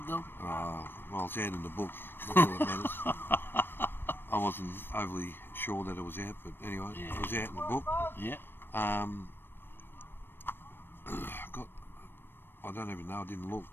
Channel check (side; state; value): right; late; 0.099 ms